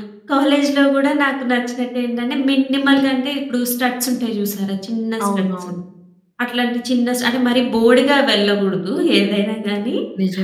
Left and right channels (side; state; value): both; identical; correlation 1.00